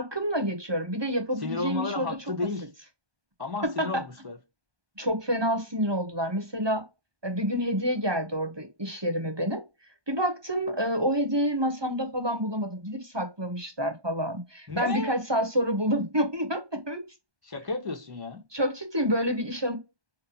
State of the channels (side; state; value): left; late; 1.2 ms